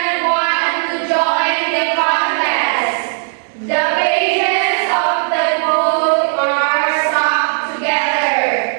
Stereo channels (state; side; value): silent; left; digital silence